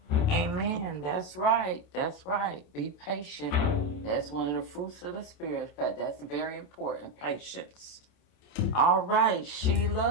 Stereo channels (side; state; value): right; late; 27 ms